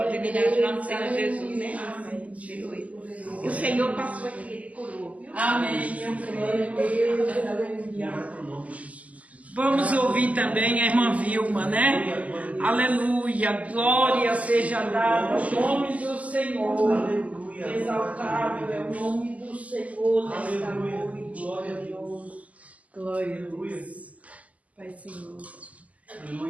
em nome do Senhor Jesus, né? Aleluia. E o Senhor passou aqui, Ele curou, viu? Amém. Eu creio, Deus. Aleluia. Vamos ouvir também a irmã Vilma, né? Aleluia. Glória seja dada ao nome do Senhor. Exaltado é o nome do Senhor nesta noite. Glória a Deus. Glória a Deus. Pai Senhor.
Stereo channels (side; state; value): left; late; 0.072 ms